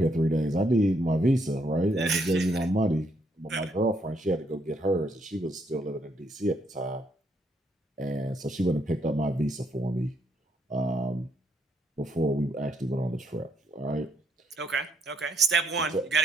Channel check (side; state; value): both; normal; correlation 0.73